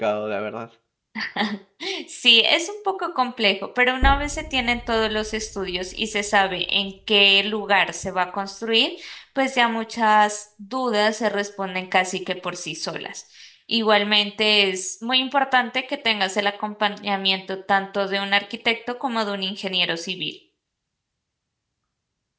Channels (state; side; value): identical; both; correlation 1.00